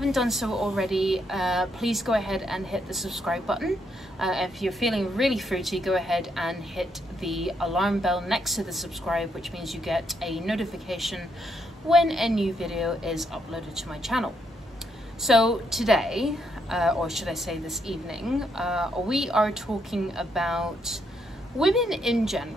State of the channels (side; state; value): both; normal; correlation 0.76